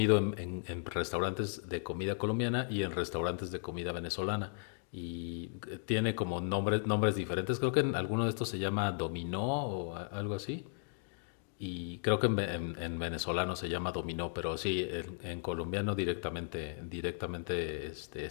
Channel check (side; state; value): right; silent; digital silence